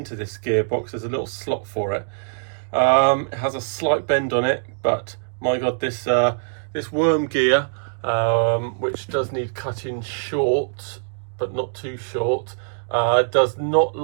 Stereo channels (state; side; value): silent; left; digital silence